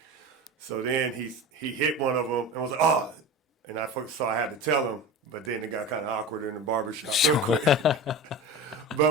So then he hit one of them and was like, oh. And so I had to tell him. But then it got kind of awkward in the barbershop real quick.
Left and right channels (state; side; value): normal; both; correlation 0.30